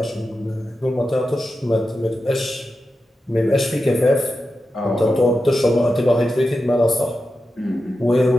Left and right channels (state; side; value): normal; both; correlation 0.90